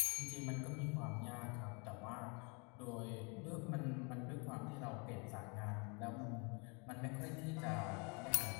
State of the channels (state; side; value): quieter; right; 32.6 dB